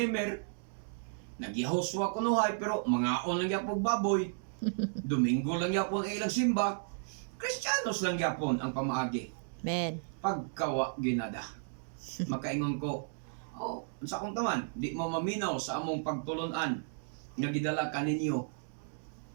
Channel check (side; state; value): left; silent; digital silence